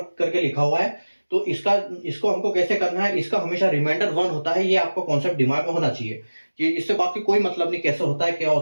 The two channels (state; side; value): inverted; both; correlation -1.00